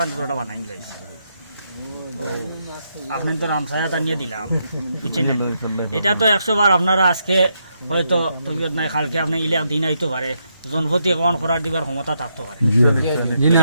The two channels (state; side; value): inverted; both; correlation -0.80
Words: বানাই দিলাইছি। আপনার তো রামসায়া নিয়ে দিলাম, বুঝছেন না? এটা তো 100 বার আপনারা আজকে হয়তো তবিয়ত নাই, কালকে আপনি ইলে দিন আইতে পারে, জনপতি কমান করার দিবার ক্ষমতা থাকতে পারে,